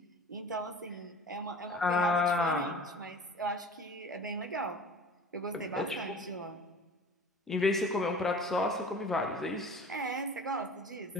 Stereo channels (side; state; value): both; normal; correlation 0.41